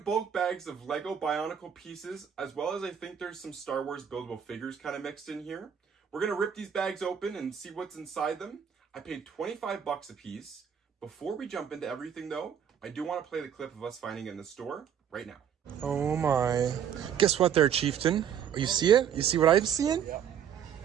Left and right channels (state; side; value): quieter; left; 8.5 dB